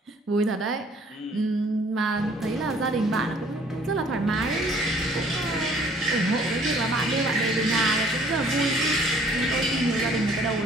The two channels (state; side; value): normal; both; correlation 0.57